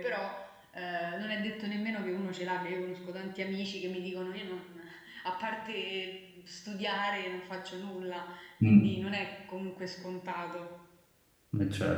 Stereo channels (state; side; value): identical; both; correlation 1.00